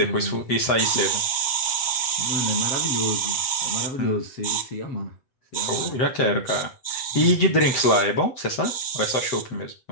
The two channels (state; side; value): late; right; 7.9 ms